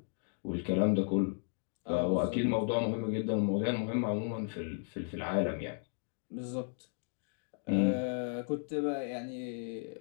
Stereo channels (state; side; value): silent; right; 55 dB below the other